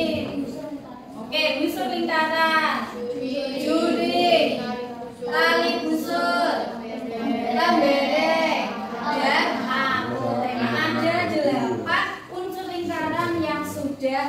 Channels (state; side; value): identical; both; correlation 1.00